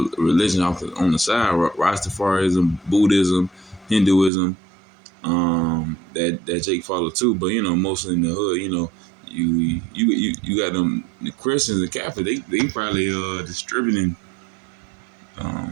religions on the side, Rastafarism, Buddhism, Hinduism, that Jake followed too. But mostly in the hood, you got them the Christians and Catholics. They probably distributing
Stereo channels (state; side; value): drops out; left; at 4.3 s